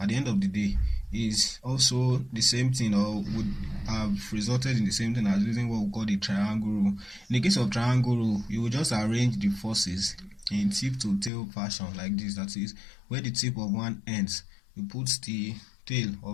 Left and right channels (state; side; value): drops out; right; at 11.3 s